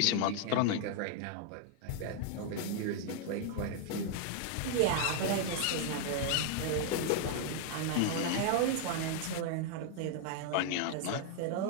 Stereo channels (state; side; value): different; both; correlation 0.00